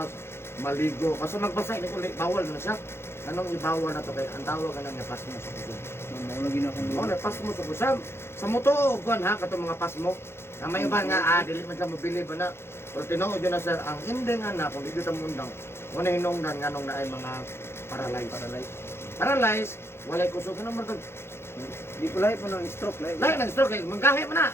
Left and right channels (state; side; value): late; right; 0.12 ms